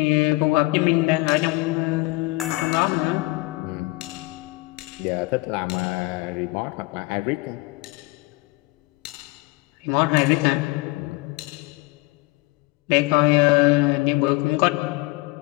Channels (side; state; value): right; quieter; 23.5 dB